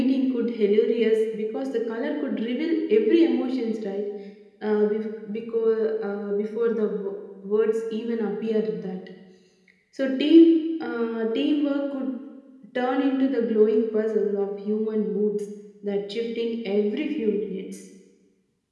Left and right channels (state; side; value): identical; both; correlation 1.00